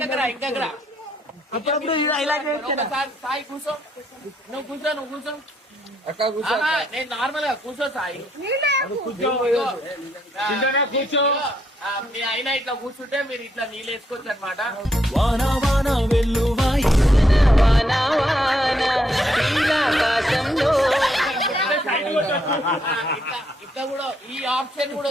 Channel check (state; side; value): normal; both; correlation 0.75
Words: అప్పుడప్పుడు సాయి కూర్చో, నువ్వు కూర్చో. అక్క కూర్చో. నేను నార్మల్ గా కూర్చో సాయి, కూర్చో. మీ అయినా ఇట్లా కూర్చుంటే మీరు ఇట్లా నీళ్ళు వేసుకోవచ్చు అనమాట. ఇట్లా కూడా ఈ ఆప్షన్ కూడా